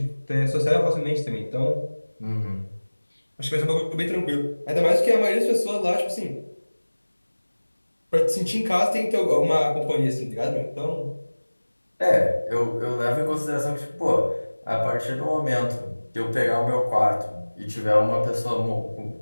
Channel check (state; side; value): inverted; both; correlation -1.00